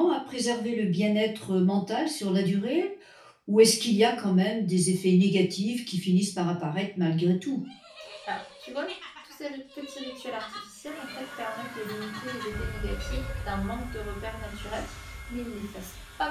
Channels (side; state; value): both; identical; correlation 1.00